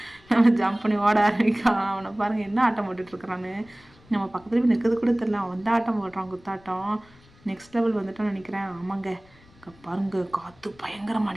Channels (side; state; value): left; noise; rumble, 27 dB below the sound